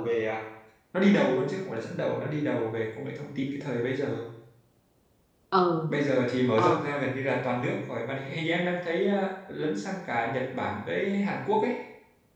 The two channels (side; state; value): both; identical; correlation 1.00